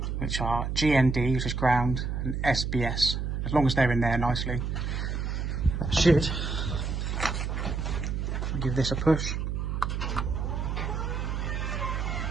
which are GND, which is ground, and SBS. As long as they're in there nicely, that should give this a push.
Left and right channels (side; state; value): right; noise; hum, 2 dB below the sound